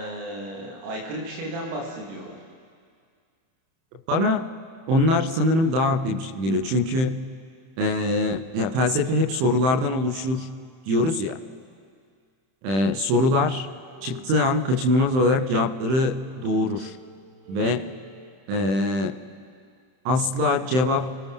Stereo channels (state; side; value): late; left; 31 ms